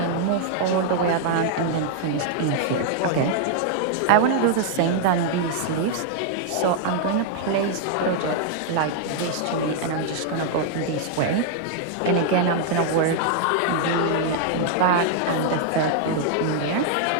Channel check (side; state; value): both; different; correlation 0.00